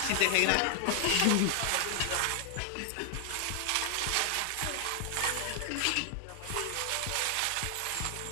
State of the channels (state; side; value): different; both; correlation 0.00